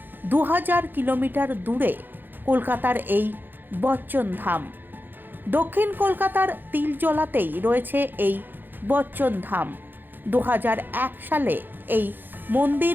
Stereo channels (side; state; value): left; late; 0.092 ms